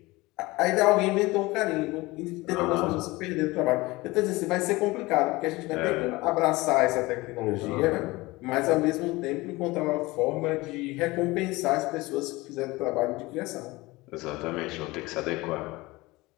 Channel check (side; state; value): right; quieter; 21.4 dB